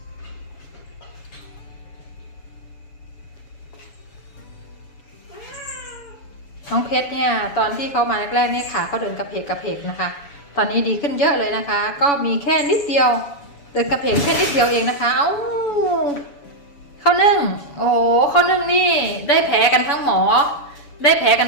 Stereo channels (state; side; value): late; right; 7.0 ms